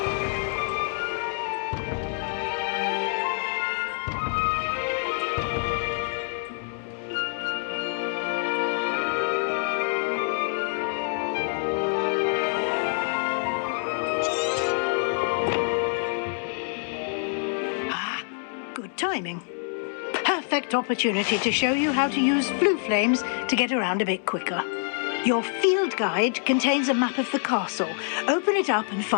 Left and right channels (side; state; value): right; silent; 61 dB below the other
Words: Good timing. Perfect opportunity to show you how to use blue flames to get around a bit quicker. Your field guide contains a map of the castle. Open it up and